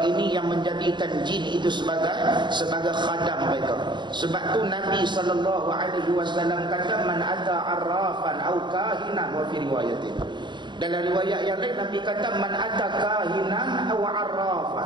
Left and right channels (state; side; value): late; left; 0.22 ms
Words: ini, yang menjadikan jin itu sebagai khadam mereka. Sebab tu Nabi sallallahu alaihi wasallam kata man ata arrafan au kahinan, wa fi riwayatin, dalam riwayat yang lain Nabi kata man ata kahinan au